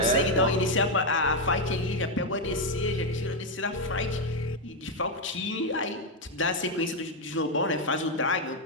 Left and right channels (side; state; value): both; normal; correlation 0.03